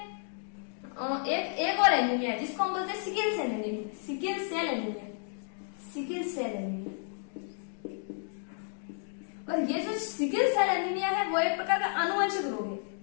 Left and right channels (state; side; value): silent; right; 57 dB below the other